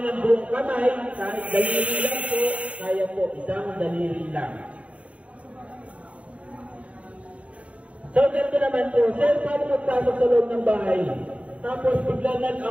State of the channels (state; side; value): late; left; 0.065 ms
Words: ng buong kamay, kahit daliri lang po, kaya po, isang daliri lang. So, ganito naman po, sir, paano magpasok sa loob ng bahay? Tapos, biglang